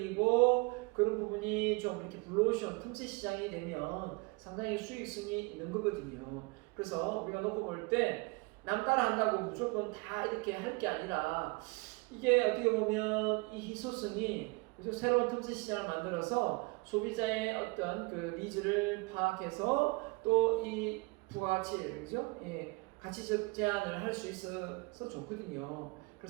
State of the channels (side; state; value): left; quieter; 27.6 dB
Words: 그런 부분이 좀 이렇게 블루오션 틈새 시장이 되면 상당히 수익성이 있는 거거든요. 그래서 우리가 놓고 볼 때 남 따라 한다고 무조건 다 이렇게 할 게 아니라 이게 어떻게 보면 이 희소성이 그죠? 새로운 틈새 시장을 만들어서 소비자의 어떤 그 니즈를 파악해서 또 이 부가가치를 그죠? 예, 가치적 제한을 할 수 있어서 좋거든요.